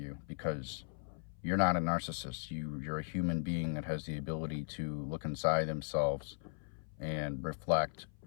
because you're not a narcissist. You're a human being that has the ability to look inside themselves and reflect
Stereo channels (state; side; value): silent; right; 53 dB below the other